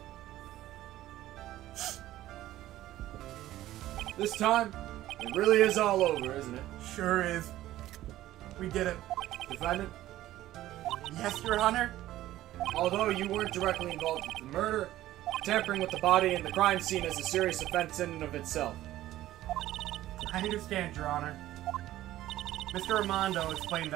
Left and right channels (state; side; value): quieter; left; 14.6 dB